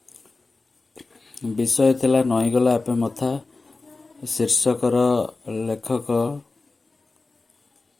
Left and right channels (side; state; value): right; quieter; 3.6 dB